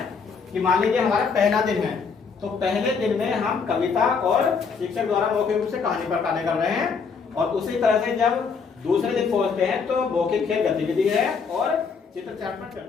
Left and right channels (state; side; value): quieter; right; 5.5 dB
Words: कि मान लीजिए हमारा पहला दिन है, तो पहले दिन में हम कविता और शिक्षक द्वारा मौखिक रूप से कहानी पर कार्य कर रहे हैं, और उसी तरह से जब दूसरे दिन पहुंचते हैं तो मौखिक खेल गतिविधि है और चित्र चार्ट पर